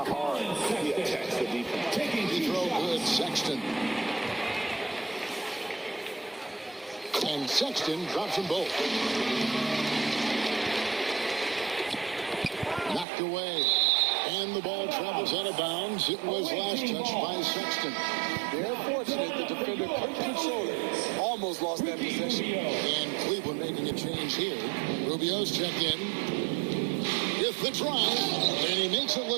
hard he attacks the defense. Free throw good, Sexton. And Sexton drops them both. Knocked away. And the ball travels out of bounds. It was last touched by Sexton. They're fortunate the defender couldn't control it. Almost lost that possession. And Cleveland making a change here. Rubio's check in with the drive. And he makes it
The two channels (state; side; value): drops out; left; at 13.1 s